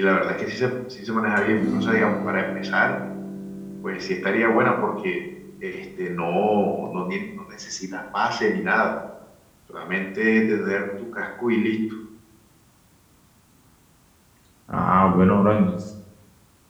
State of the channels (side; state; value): both; identical; correlation 1.00